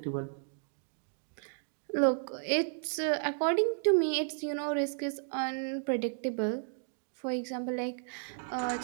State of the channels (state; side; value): silent; left; digital silence